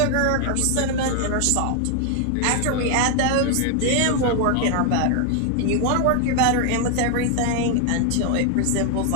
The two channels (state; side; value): different; both; correlation 0.00